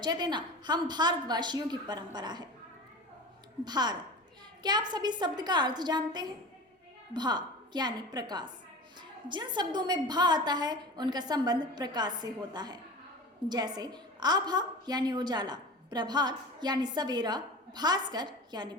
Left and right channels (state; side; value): normal; both; correlation 0.33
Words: देना हम भारतवासियों की परंपरा है। भारत, क्या आप सभी शब्द का अर्थ जानते हैं? भा यानी प्रकाश। जिन शब्दों में भा आता है उनका संबंध प्रकाश से होता है। जैसे आभा यानी उजाला, प्रभात यानी सवेरा, भास्कर यानी